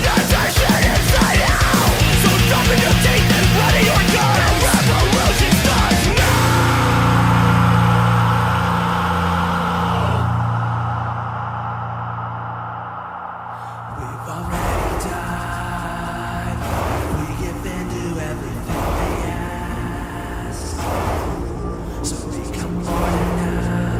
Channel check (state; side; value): identical; both; correlation 1.00